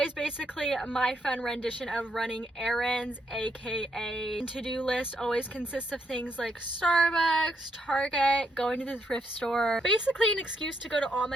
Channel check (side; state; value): both; normal; correlation 0.76